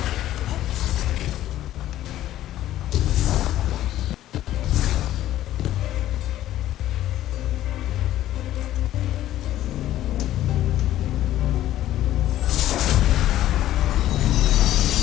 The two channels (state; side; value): quieter; right; 13.4 dB